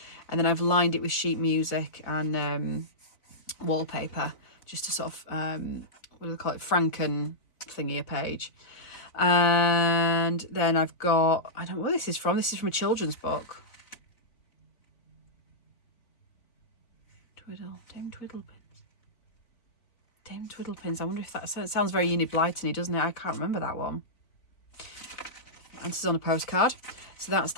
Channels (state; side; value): late; right; 3.9 ms